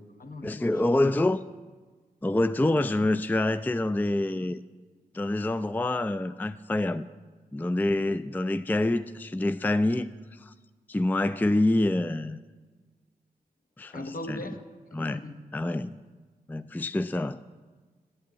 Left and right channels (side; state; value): both; normal; correlation 0.94